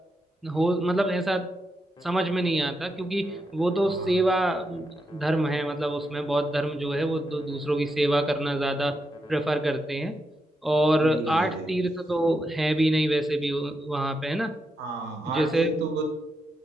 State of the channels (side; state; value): both; normal; correlation 0.84